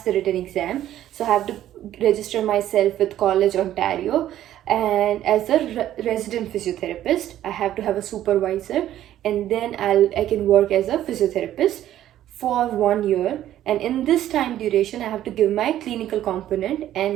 the written exam, so I have to register myself with College Ontario, and as a resident physiotherapist, I have to have a supervisor, and then I can work as a physiotherapist for 1 year. And in this time duration, I have to give my clinical component,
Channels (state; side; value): quieter; left; 12.4 dB